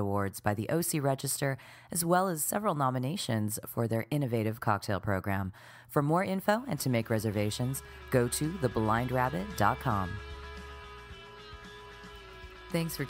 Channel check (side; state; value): both; identical; correlation 1.00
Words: by the OC Register, as well as several nominations for their innovative cocktail program. For more info and to make reservations, go to theblindrabbit.com. Thanks for